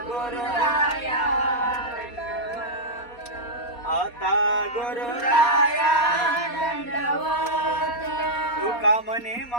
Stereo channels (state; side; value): late; right; 4.2 ms